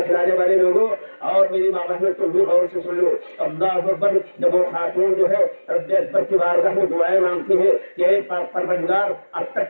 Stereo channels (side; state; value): both; inverted; correlation -1.00